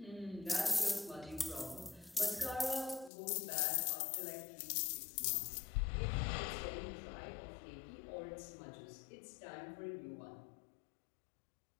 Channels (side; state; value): right; drops out; at 3.1 s